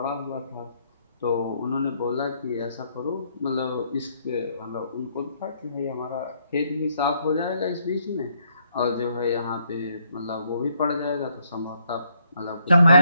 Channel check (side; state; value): both; inverted; correlation -0.71